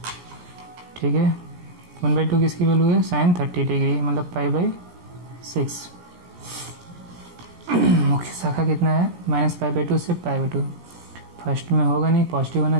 ठीक है। 1/2 किसकी वैल्यू है, साइन 30 डिग्री मतलब π/6। मुख्य शाखा कितना है, -π/2 से π/2। फर्स्ट में होगा नहीं, पॉजिटिव होना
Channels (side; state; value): left; late; 17 ms